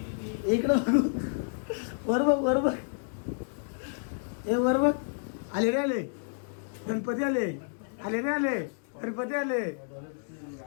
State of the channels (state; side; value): silent; right; 58 dB below the other